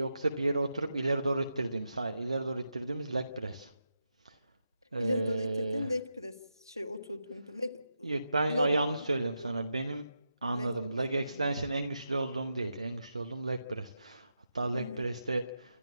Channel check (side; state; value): both; inverted; correlation -0.87